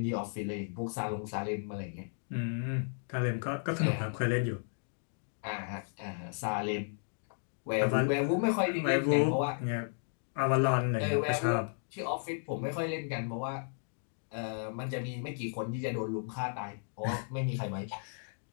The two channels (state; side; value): silent; right; digital silence